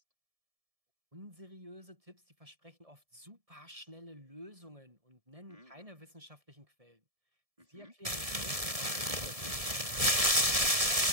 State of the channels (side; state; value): left; late; 1.7 ms